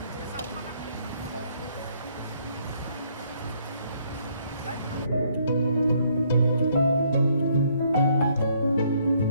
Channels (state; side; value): inverted; both; correlation -0.68